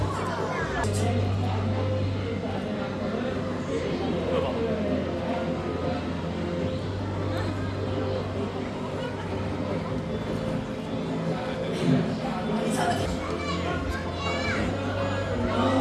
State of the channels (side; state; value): both; identical; correlation 1.00